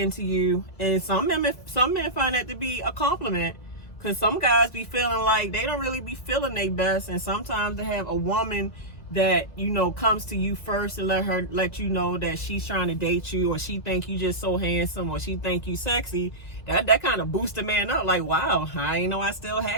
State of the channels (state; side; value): late; right; 2.0 ms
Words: you, and some men find that to be a compliment, because some guys be feeling like they don't really be feeling their best, and sometimes to have a woman that, you know, comes to you first and let you know that she's trying to date you, or she think you just so handsome, or she think you sexy, that kind of boosts a man up, like, wow, I ain't know I still